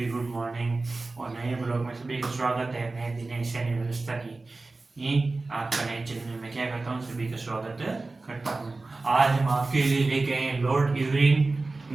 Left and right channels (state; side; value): quieter; left; 3.4 dB